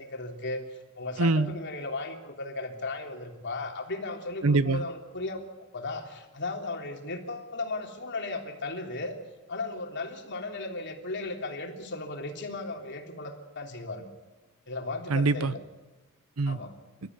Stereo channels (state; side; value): normal; both; correlation 0.18